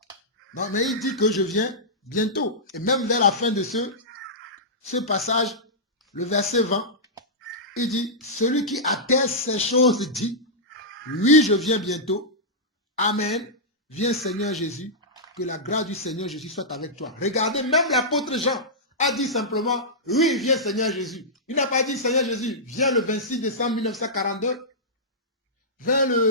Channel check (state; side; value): normal; both; correlation -0.13